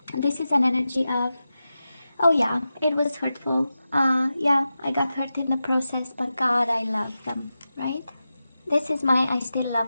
This is an energy of, oh yeah, it was hurtful. Yeah, I got hurt in the process, but God, I love them, right? This is my I still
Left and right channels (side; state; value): both; inverted; correlation -0.92